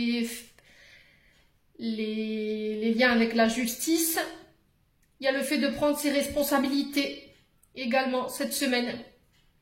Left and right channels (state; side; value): identical; both; correlation 1.00